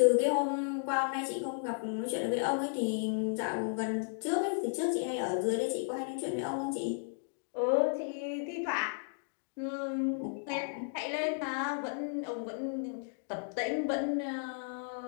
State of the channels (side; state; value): right; silent; digital silence